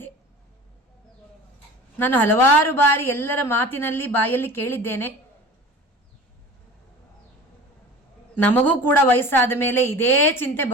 ನಾನು ಹಲವಾರು ಬಾರಿ ಎಲ್ಲರ ಮಾತಿನಲ್ಲಿ ಬಾಯಲ್ಲಿ ಕೇಳಿದ್ದೇನೆ. ನಮಗೂ ಕೂಡ ವಯಸ್ಸಾದ ಮೇಲೆ ಇದೇ ಚಿಂತೆ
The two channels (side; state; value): both; normal; correlation 0.38